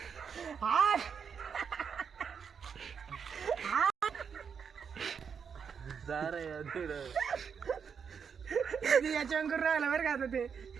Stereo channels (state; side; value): quieter; left; 6.7 dB